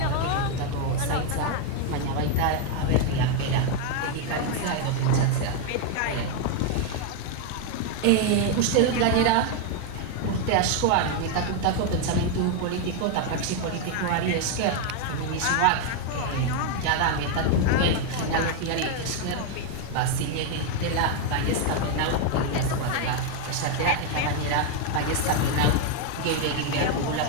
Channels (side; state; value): both; different; correlation 0.01